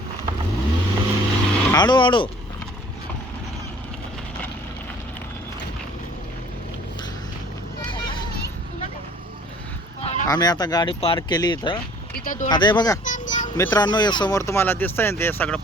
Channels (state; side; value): normal; both; correlation 0.52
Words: हळू हळू. आम्ही आता गाडी पार्क केली इथं. आता हे बघा मित्रांनो, हे समोर तुम्हाला दिसतंय ना, ते सगळं